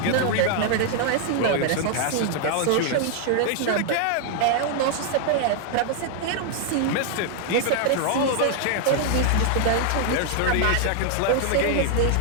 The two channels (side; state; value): both; different; correlation 0.00